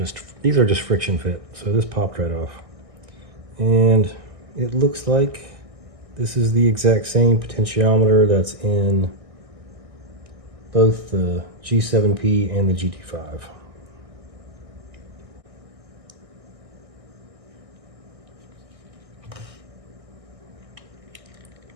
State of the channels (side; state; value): left; late; 1.6 ms